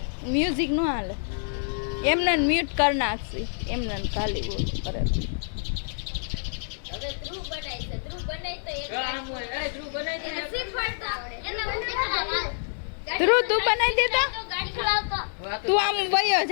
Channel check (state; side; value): silent; right; digital silence